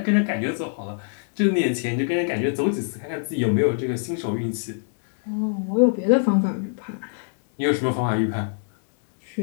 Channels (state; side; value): silent; right; digital silence